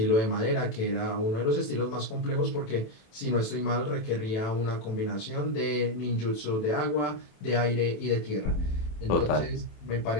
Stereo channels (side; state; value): right; late; 27 ms